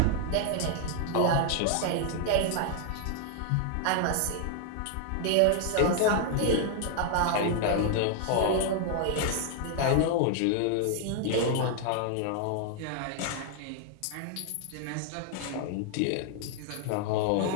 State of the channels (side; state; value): both; different; correlation 0.00